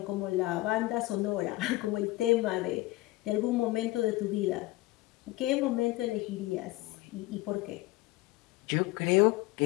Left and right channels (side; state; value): right; quieter; 19.1 dB